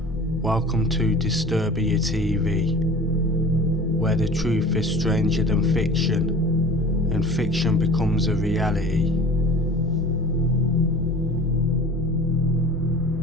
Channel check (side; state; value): both; normal; correlation 0.42